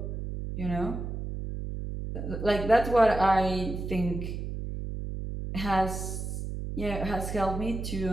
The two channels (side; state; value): right; noise; hum, 5 dB below the sound